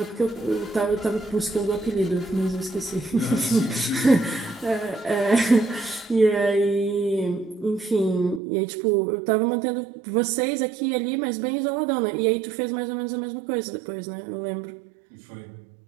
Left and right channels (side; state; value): left; drops out; at 8.4 s